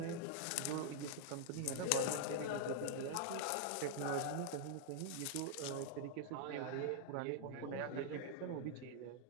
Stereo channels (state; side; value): different; both; correlation -0.01